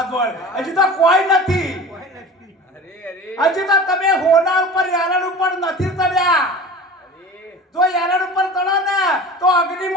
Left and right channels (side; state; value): both; normal; correlation 0.37